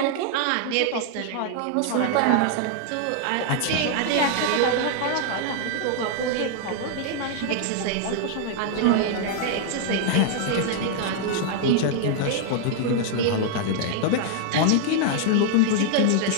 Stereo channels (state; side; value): different; both; correlation 0.00